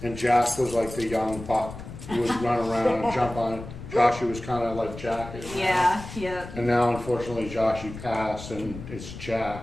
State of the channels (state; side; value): noise; left; rumble, 12 dB below the sound